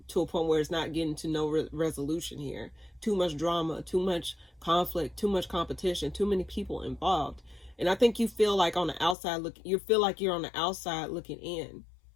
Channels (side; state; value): right; drops out; at 9.2 s